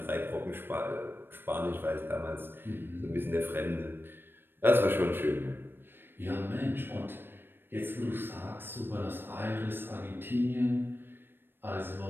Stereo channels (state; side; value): late; left; 0.099 ms